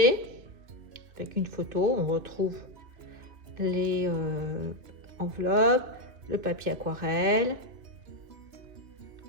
avec une photo. On retrouve les enveloppes, le papier aquarelle,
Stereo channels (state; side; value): late; left; 2.8 ms